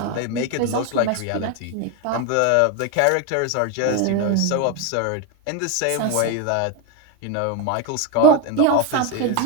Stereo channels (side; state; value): both; different; correlation 0.02